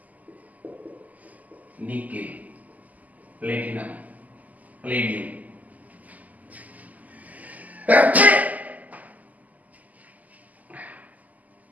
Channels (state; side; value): late; left; 0.078 ms